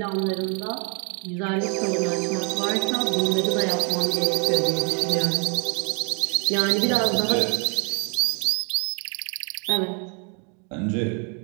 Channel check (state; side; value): quieter; left; 36.6 dB